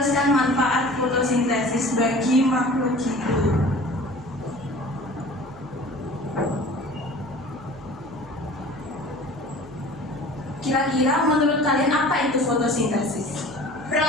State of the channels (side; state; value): right; noise; hum, 20 dB below the sound